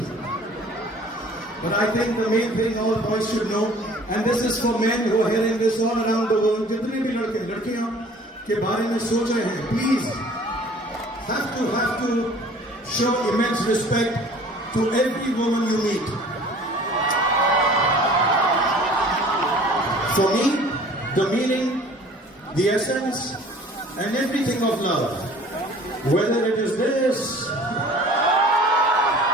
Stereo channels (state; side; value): normal; both; correlation 0.49